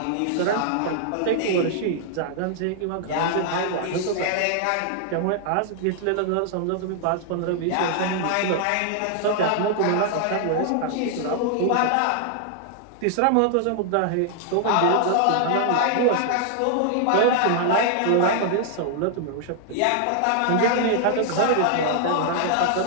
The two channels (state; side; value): different; both; correlation -0.01